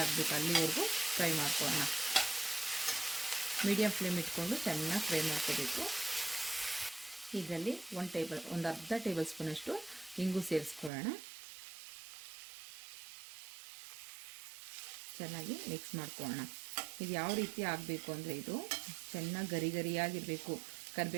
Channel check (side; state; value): left; drops out; at 10.9 s